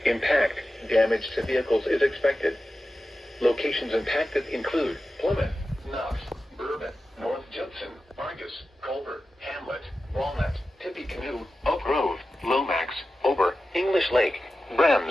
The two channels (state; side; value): normal; both; correlation 0.93